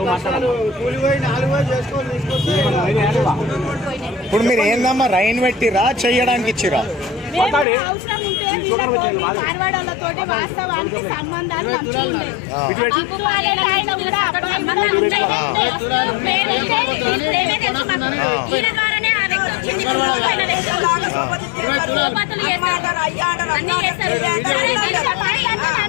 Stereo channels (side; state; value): right; drops out; at 7.7 s